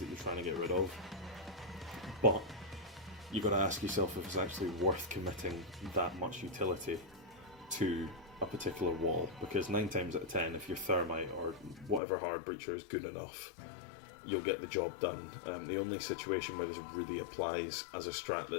you're trying to get rid of. But you've got to ask yourself if it's actually worth committing that much utility to a particular wall, because 9 times out of 10, if your thermite or whatever hard breacher is good enough, you'll get the job done. The only situation where this really applies as a strat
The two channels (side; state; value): right; drops out; at 12.0 s